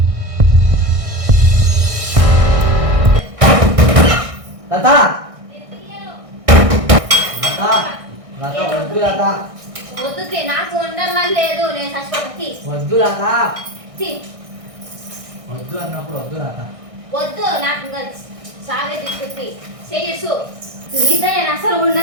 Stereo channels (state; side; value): late; left; 1.6 ms